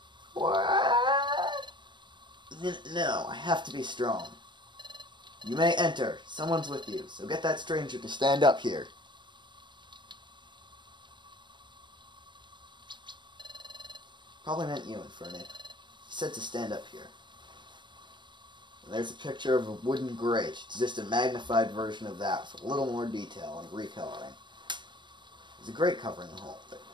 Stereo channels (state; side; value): late; left; 0.22 ms